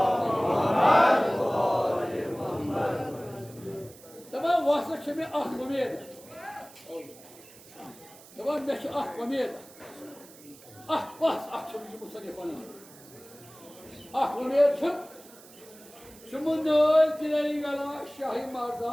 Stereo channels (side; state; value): right; noise; hiss, 21 dB below the sound